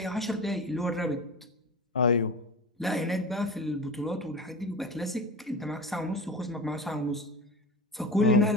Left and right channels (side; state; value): both; normal; correlation 0.30